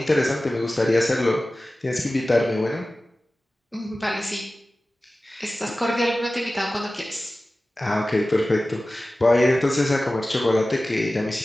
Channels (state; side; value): normal; both; correlation 0.96